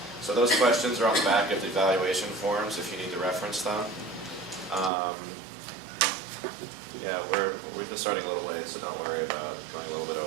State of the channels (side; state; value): left; drops out; at 4.9 s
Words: So those questions are on the back of the evaluation forms if you need to reference them. Yeah, we're just starting a little late, so don't worry about going a little bit